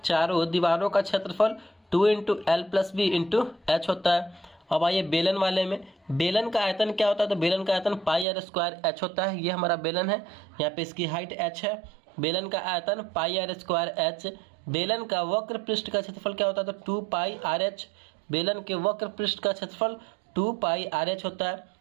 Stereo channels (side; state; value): left; drops out; at 8.2 s